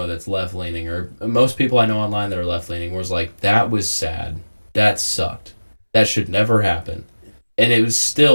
that's left leaning, or most people I know online that are left leaning, was like, "That was sad. That sucked. That should never happen." And it was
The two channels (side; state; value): both; inverted; correlation -1.00